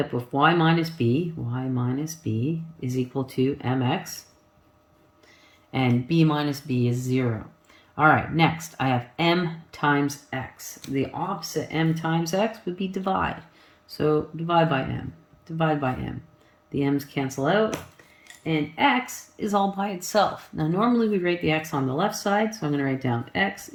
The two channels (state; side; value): identical; both; correlation 1.00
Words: with y minus b is equal to mx, and b minus b is 0. All right, next I have m times x. The opposite m times x would be divide. So divide by m, divide by m. The m's cancel out, and x is all by itself. Now normally we write the x on the left side, so I'm going to write down x